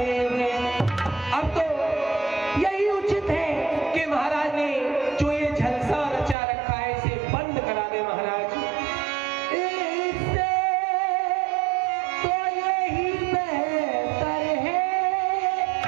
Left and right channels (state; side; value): drops out; left; at 6.4 s